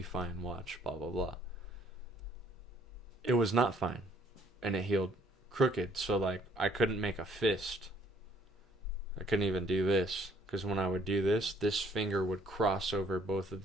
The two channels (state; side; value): normal; both; correlation 0.62